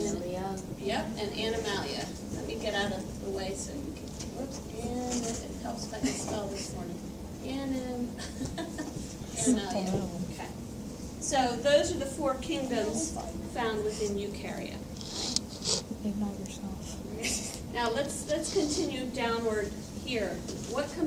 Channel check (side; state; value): both; identical; correlation 1.00